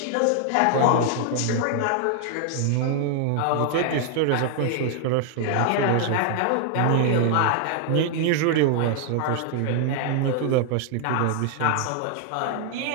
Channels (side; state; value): both; different; correlation 0.00